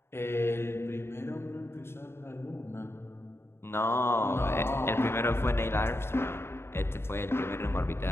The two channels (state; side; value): late; right; 0.12 ms